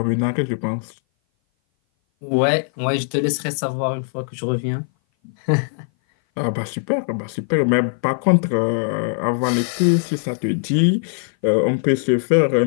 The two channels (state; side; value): silent; right; 58 dB below the other